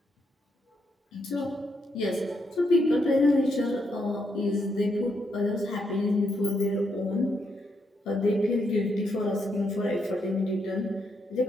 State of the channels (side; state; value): both; normal; correlation 0.78